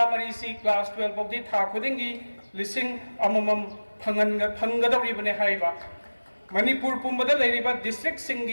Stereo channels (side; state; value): both; inverted; correlation -1.00